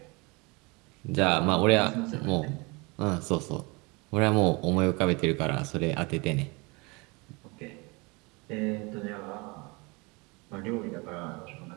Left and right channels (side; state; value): left; quieter; 27.3 dB